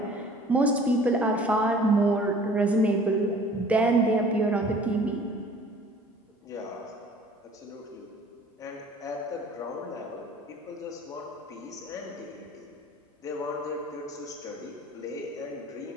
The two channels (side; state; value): both; normal; correlation 0.50